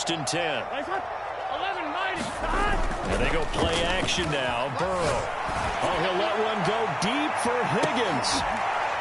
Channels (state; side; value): identical; both; correlation 1.00